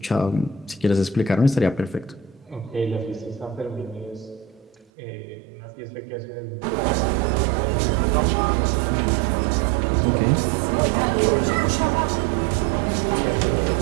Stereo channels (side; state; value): left; drops out; at 4.9 s